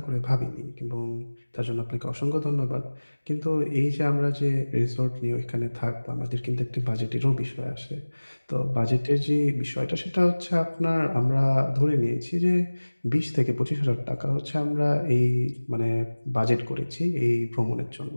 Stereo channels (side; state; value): both; inverted; correlation -1.00